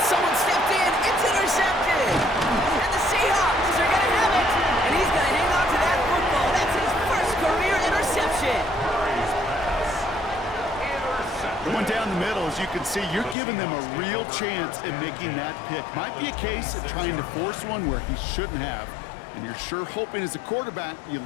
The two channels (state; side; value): drops out; right; at 13.4 s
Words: someone stepped in. It's intercepted. And the Seahawks are going to have it. And he's going to hang on to that football. That's his first career interception. Going down the middle, as you can see, you're giving them a real chance at making that pick. Might be a case of trying to force one where he shouldn't have. And you're sure hoping as a quarterback you